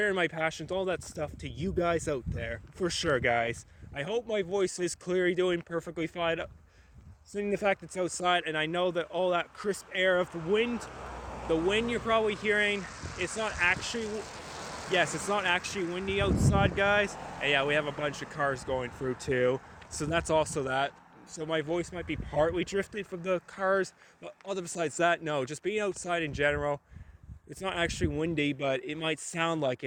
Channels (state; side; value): identical; both; correlation 1.00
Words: my passions, all that stuff to you guys out there, for sure, guys. I hope my voice is clearly doing perfectly fine, seeing the fact it's outside, and I know that all that crisp air of the wind you're probably hearing, it's not actually windy outside, guys. And yeah, we have a bunch of cars going through too, so that's also that. So my voice might be partly drifted from the cars, but other besides that, no, just being outside in general, it's not actually windy, but it might sound like